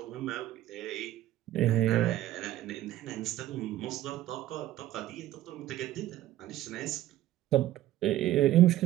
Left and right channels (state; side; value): quieter; left; 14.2 dB